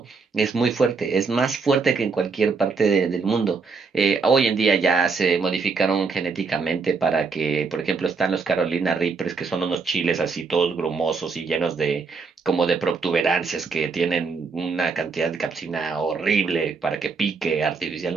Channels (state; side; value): quieter; left; 4.8 dB